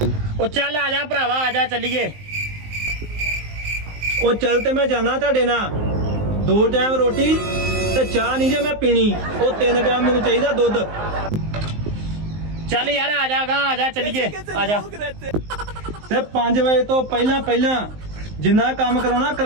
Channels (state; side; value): late; left; 19 ms